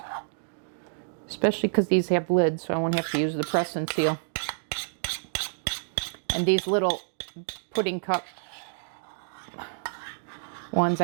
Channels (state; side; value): silent; left; digital silence